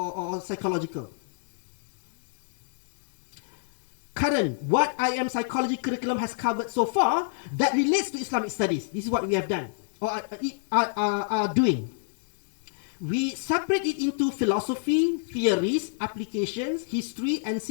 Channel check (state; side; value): silent; right; 60 dB below the other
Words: psychological. Current, what IM psychology curriculum has covered so far that relates to Islamic studies. This is what we have done, or are doing. We separate it into philosophy, theories, applications, history, and